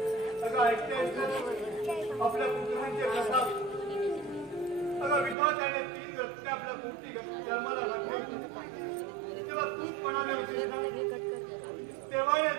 अगं ऐकतेस ना आपल्या पुत्रांचे प्रताप. अगं विधात्याने 3 रत्ने आपल्या पोटी जन्माला घातली, तेव्हा तूच म्हणाले होते ना, तेव्हाने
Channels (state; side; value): drops out; left; at 5.4 s